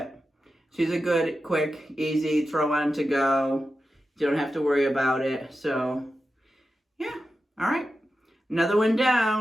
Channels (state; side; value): normal; both; correlation 0.91